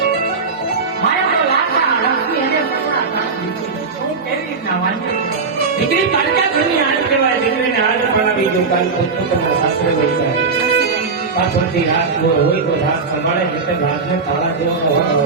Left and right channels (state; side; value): quieter; left; 4.6 dB